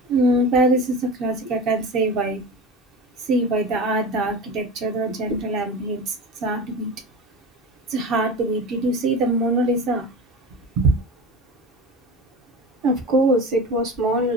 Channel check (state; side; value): normal; both; correlation 0.30